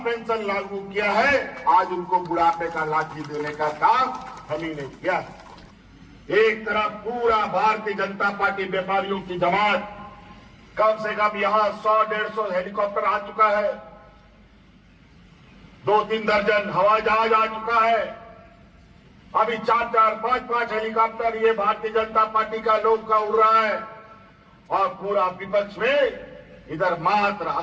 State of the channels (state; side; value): identical; both; correlation 1.00